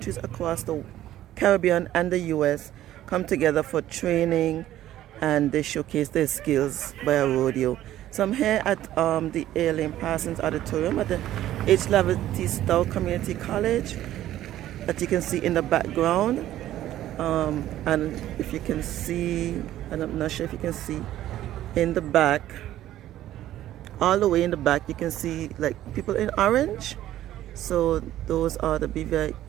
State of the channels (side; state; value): left; quieter; 13.3 dB